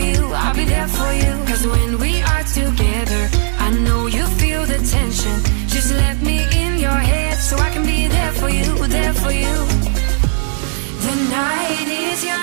I'll be there for you. 'Cause when we are together, I know you feel the tension. Just let me in your head so I can be there for you, there for you. The night is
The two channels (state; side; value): silent; left; 66 dB below the other